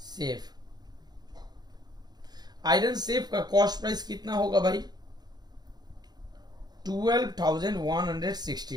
safe. Iron safe का कॉस्ट प्राइस कितना होगा भाई?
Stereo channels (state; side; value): late; left; 0.20 ms